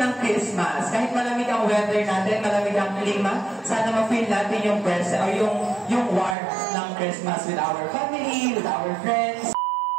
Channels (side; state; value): left; drops out; at 6.4 s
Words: Christmas. Kahit malamig ang weather natin, malamig ang klima, sana ma-feel natin yung present, or yung warmth ng Christmas with our family, with our friends.